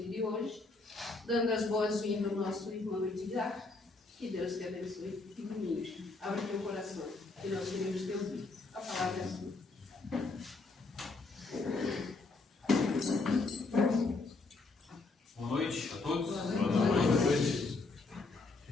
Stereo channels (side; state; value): right; quieter; 3.6 dB